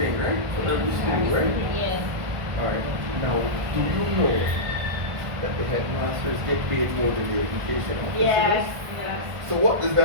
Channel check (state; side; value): late; left; 1.5 ms